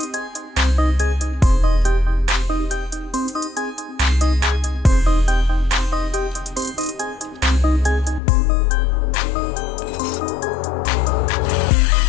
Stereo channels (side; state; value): right; drops out; at 8.2 s